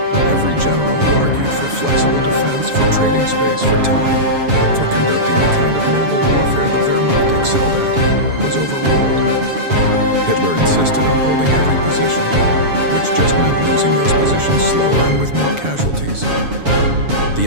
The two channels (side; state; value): left; late; 7.2 ms